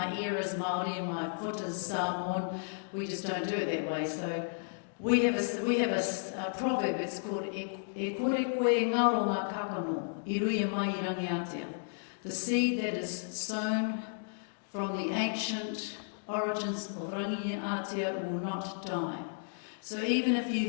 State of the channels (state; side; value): silent; right; digital silence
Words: ear is Māori and my foot is Samoan. We just don't do it that way. So we have a proverb. It's called E kore koe ngaro ngā kakano, I ruia mai I rangi Aotea. The seed that is sown from the ancient origins of rangi Aotea will not die. So even if you